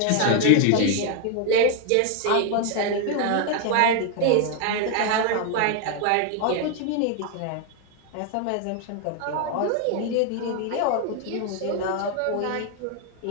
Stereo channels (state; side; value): different; both; correlation 0.01